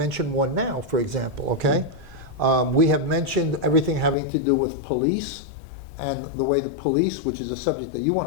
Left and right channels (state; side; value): drops out; right; at 4.2 s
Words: one now, for example, okay? We have mentioned everything having to do with police and the way the police, which is a subject that you